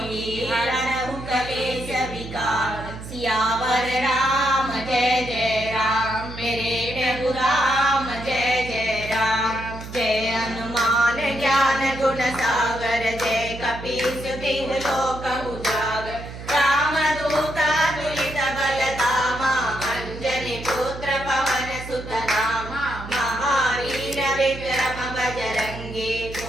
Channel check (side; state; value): right; noise; hum, 11 dB below the sound